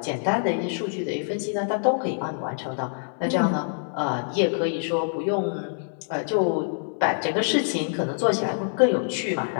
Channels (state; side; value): silent; right; 58 dB below the other